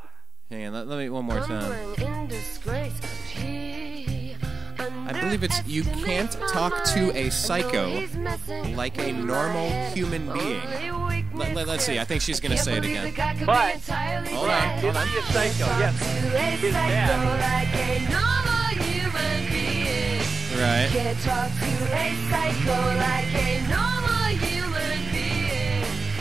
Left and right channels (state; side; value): quieter; left; 4.4 dB